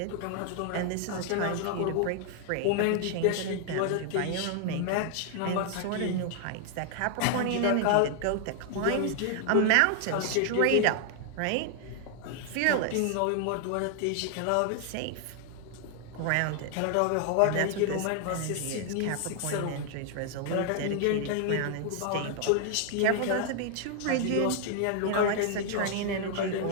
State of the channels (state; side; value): different; both; correlation 0.00